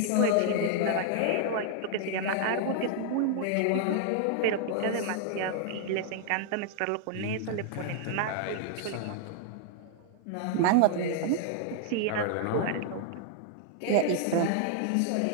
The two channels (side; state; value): both; different; correlation 0.00